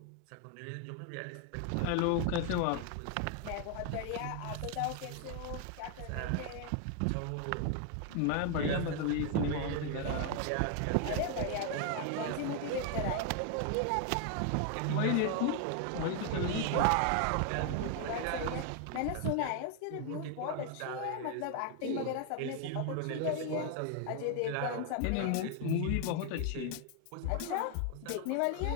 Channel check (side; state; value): both; different; correlation 0.00